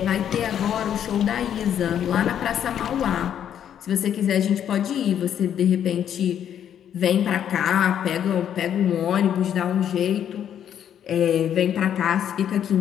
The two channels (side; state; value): right; quieter; 9.6 dB